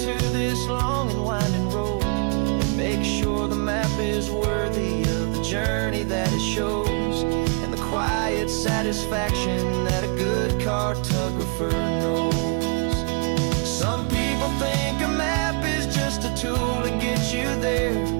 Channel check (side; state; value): left; quieter; 36.6 dB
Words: this long and winding road, and make sure the map is worthy of the journey that it shows, and the quiet satisfaction that a good cartographer knows. Some people think a map is just a tool to get you there,